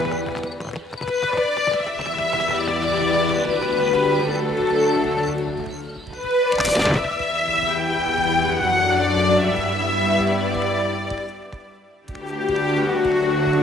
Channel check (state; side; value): normal; both; correlation 0.70